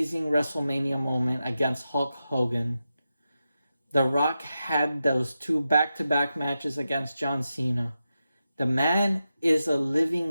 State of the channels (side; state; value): both; inverted; correlation -0.90